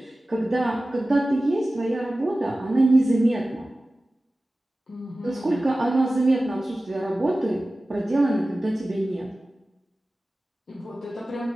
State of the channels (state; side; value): normal; both; correlation 0.96